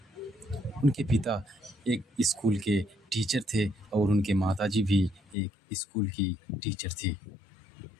उनके पिता एक स्कूल के टीचर थे और उनके माताजी भी एक स्कूल की टीचर थी।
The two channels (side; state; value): right; drops out; at 5.4 s